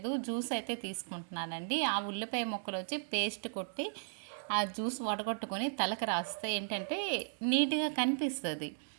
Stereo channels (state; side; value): silent; left; digital silence